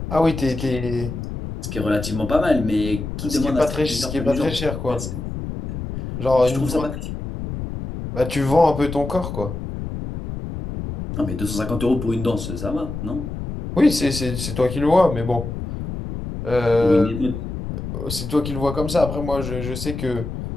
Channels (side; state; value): left; noise; rumble, 6 dB below the sound